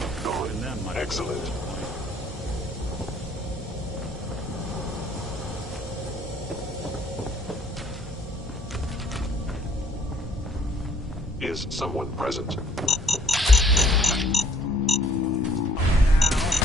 Gone. Excellent. Is someone present?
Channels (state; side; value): normal; both; correlation 0.62